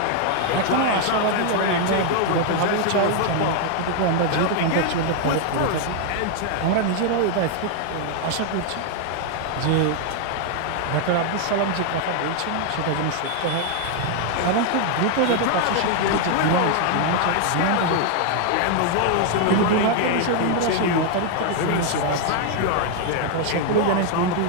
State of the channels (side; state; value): both; different; correlation 0.00